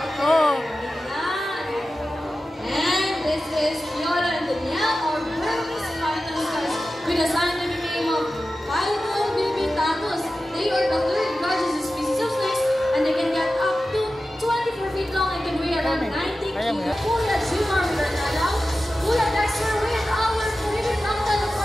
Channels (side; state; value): both; normal; correlation 0.94